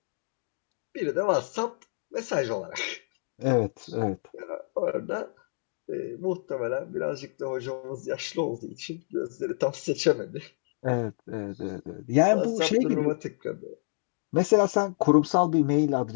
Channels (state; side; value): silent; right; digital silence